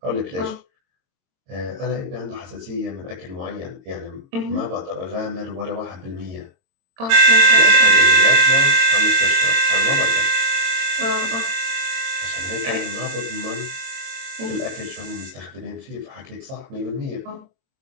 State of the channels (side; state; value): left; late; 22 ms